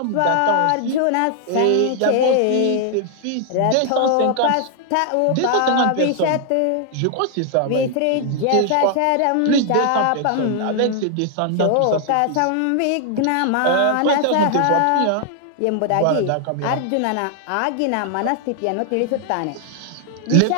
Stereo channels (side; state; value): both; different; correlation 0.00